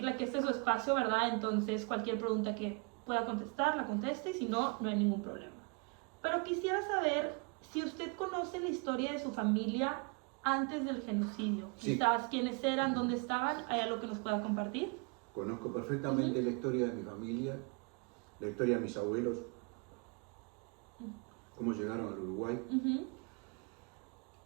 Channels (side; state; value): left; quieter; 34.4 dB